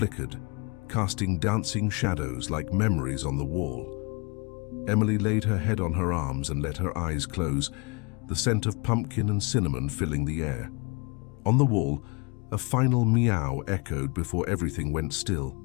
casting dancing shadows like memories on the wall. Emily laid her head on her arms and let her eyes close, the scent of pumpkin and cinnamon filling the air. On the wall, a final meow echoed before everything went still.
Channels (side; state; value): right; quieter; 31.3 dB